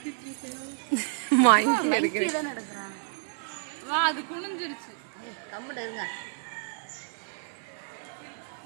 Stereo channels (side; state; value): left; silent; 57 dB below the other